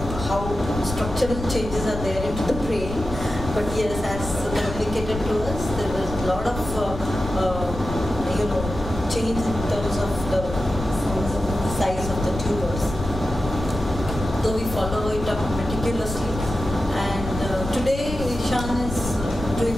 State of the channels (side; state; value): left; noise; rumble, 7 dB below the sound